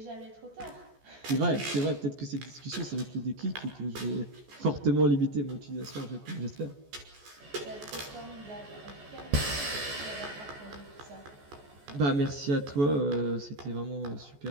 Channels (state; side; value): late; left; 14 ms